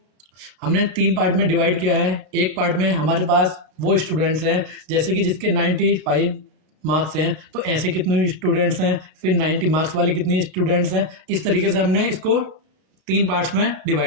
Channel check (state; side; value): late; left; 32 ms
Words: हमने 3 पार्ट में डिवाइड किया है। एक पार्ट में हमारे पास वो स्टूडेंट्स हैं जैसे कि जिसके 95 मार्क्स हैं, तो ऐसे कितने स्टूडेंट्स हैं, फिर 90 मार्क्स वाले कितने स्टूडेंट्स हैं। इस तरीके से हमने इसको 3 पार्ट्स में